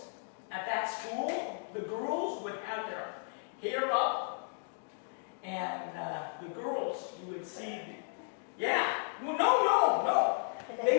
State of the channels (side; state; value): right; silent; 55 dB below the other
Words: at that school, the girls would have their hair up, and the girls, you would see, well, no.